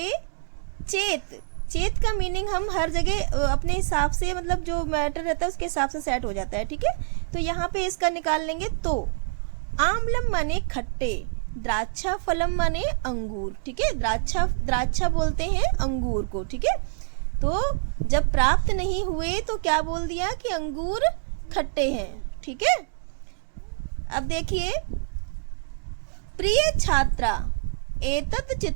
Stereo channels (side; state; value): left; silent; digital silence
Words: चेत चेत का मीनिंग हम हर जगह अपने हिसाब से, मतलब जो मैटर रहता है उसके हिसाब से सेट हो जाता है, ठीक है? तो यहाँ पे इसका निकाल लेंगे। तो आम्लम माने खट्टे, द्राक्षा फलम माने अंगूर, ठीक है? द्राक्षा बोलते हैं अंगूर को, ठीक है? तो जब प्राप्त नहीं हुए तो क्या बोल दिया कि अंगूर खट्टे हैं, ठीक है? अब देखिए, प्रिय छात्रा एतत्